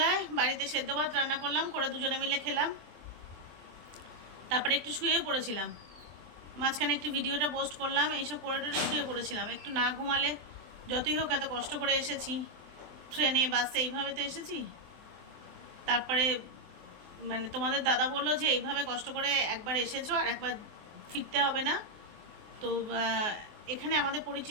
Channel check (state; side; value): late; left; 23 ms